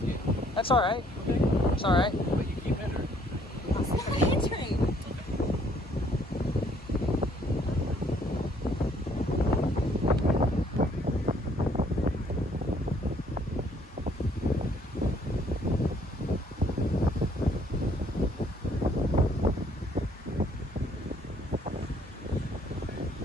That's all right. Okay. It's all right. But you keep hindering. It's not hindering.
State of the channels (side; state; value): both; normal; correlation 0.64